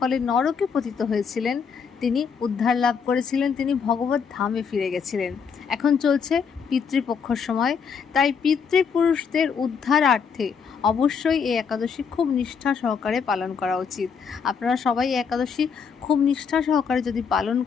নরকে পতিত হয়েছিলেন, তিনি উদ্ধার লাভ করেছিলেন, তিনি ভগবত ধামে ফিরে গেছিলেন। এখন চলছে পিতৃপক্ষর সময়, তাই পিতৃপুরুষদের উদ্ধারার্থে অবশ্যই এই একাদশী খুব নিষ্ঠা সহকারে পালন করা উচিত। আপনারা সবাই এই একাদশী খুব নিষ্ঠা সহকারে যদি পালন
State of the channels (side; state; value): right; quieter; 6.3 dB